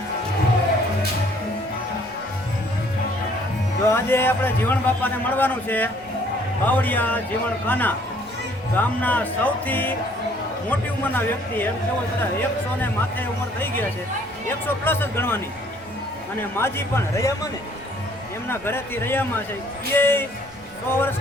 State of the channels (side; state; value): right; noise; rumble, 25 dB below the sound